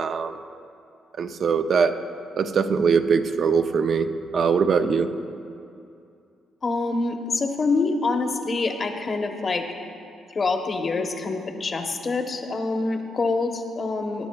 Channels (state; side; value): normal; both; correlation 0.79